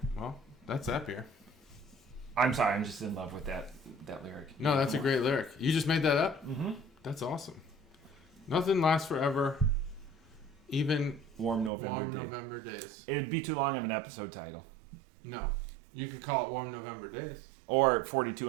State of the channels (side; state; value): left; drops out; at 11.7 s